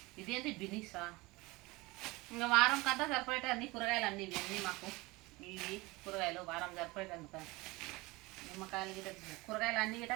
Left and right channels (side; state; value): left; quieter; 22.6 dB